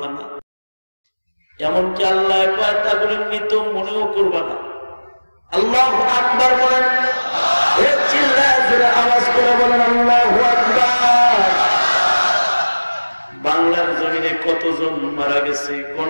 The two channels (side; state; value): both; inverted; correlation -1.00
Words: না এমনকি আল্লাহ কয় তারপরে মৃত মনেও করবা না আল্লাহু আকবার বলেন চিল্লায় জোরে আওয়াজ করে বলেন আল্লাহু আকবার বাংলার জমিনে কতজন মারা গেছে